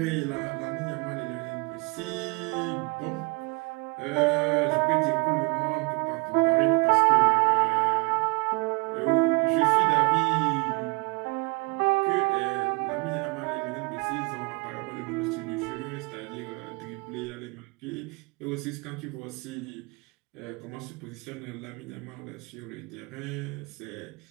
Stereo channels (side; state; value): left; quieter; 28.5 dB